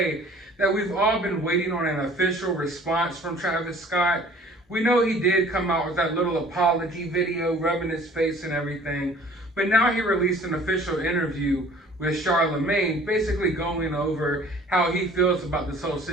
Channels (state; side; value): normal; both; correlation 0.51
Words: that we've all been waiting on an official response from Travis Scott. We know he did come out with that little apology video, rubbing his face and everything, but now he released an official interview with Charlemagne, basically going over how he feels about this whole